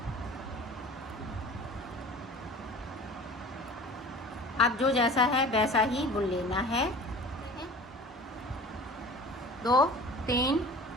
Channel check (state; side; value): normal; both; correlation 0.42